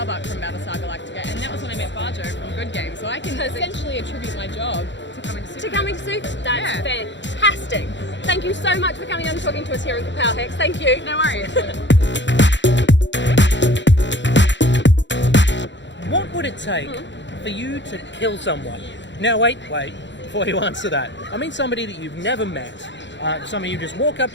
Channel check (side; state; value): right; late; 0.53 ms